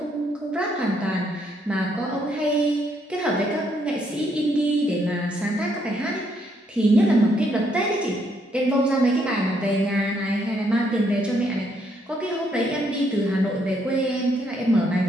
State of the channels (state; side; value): normal; both; correlation 0.73